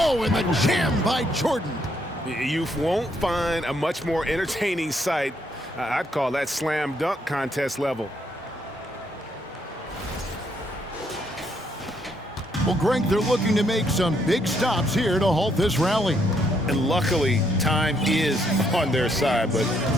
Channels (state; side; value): normal; both; correlation 0.73